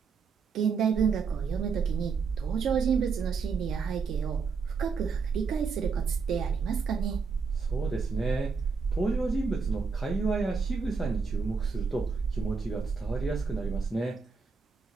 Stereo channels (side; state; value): left; quieter; 5.2 dB